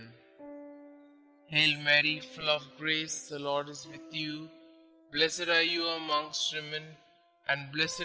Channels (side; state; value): both; identical; correlation 1.00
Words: Hail Mary, full of grace, the Lord is with you. Blessed are you amongst women, and